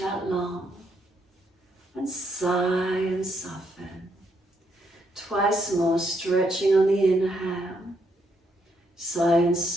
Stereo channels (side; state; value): both; normal; correlation 0.75